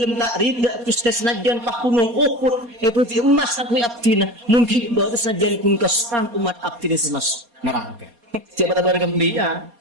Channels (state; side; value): late; left; 4.2 ms